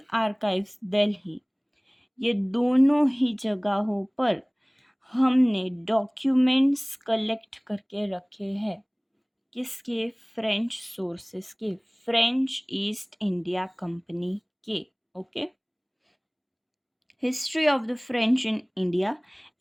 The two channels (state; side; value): identical; both; correlation 1.00